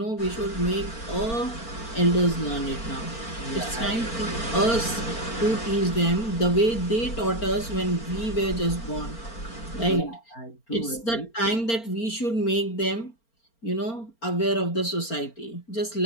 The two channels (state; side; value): late; right; 4.4 ms